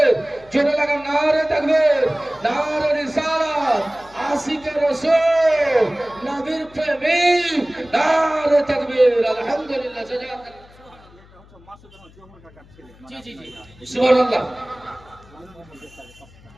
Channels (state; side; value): noise; left; hum, 25 dB below the sound